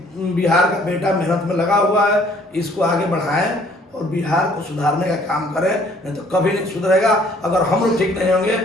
बिहार का बेटा मेहनत में लगा हुआ है, इसको आगे बढ़ाएं और बिहार को सुधारने का काम करें। नहीं तो कभी नहीं सुधरेगा। अगर हम लोग ठीक नहीं होंगे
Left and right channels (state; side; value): normal; both; correlation 0.59